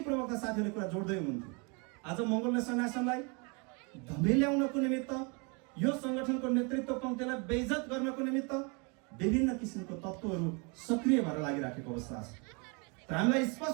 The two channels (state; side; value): quieter; left; 32.6 dB